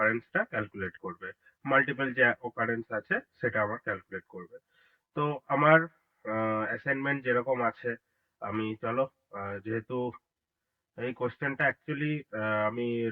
ক্যালকুলেট করবে, মাল্টিপল যে অকারেন্স আছে সেটা আমার ক্যালকুলেট করবে। তো আমার অ্যাসাইনমেন্ট যেরকম আছে, আমি চলো যেহেতু এই কোশ্চেনটা অ্যাকচুয়ালি আমি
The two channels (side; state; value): both; identical; correlation 1.00